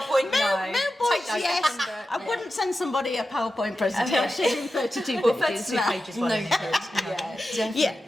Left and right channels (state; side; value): normal; both; correlation 0.92